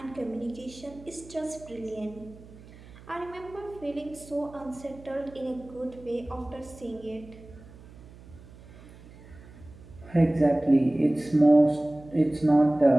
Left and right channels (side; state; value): right; noise; hum, 20 dB below the sound